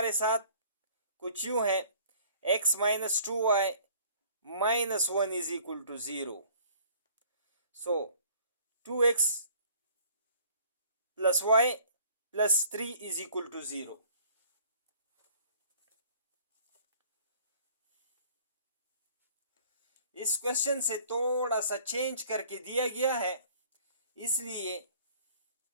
साथ कुछ यूं है, x minus 2y minus 1 is equal to 0। So 2x plus y plus 3 is equal to 0। इस क्वेश्चन से थोड़ा सा चेंज करके दिया गया है, इसलिए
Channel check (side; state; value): both; inverted; correlation -0.54